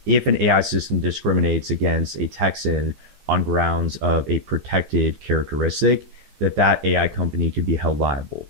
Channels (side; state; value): left; late; 14 ms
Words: if an AI system discriminates against a Texan on grounds of a protected characteristic, that AI company could be held liable.